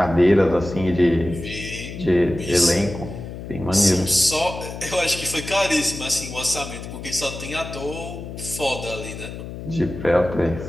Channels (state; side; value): noise; left; hum, 10 dB below the sound